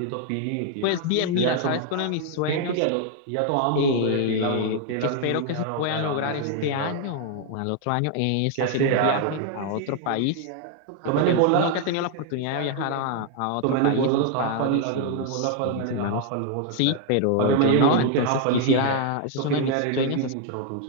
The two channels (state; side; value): different; both; correlation 0.00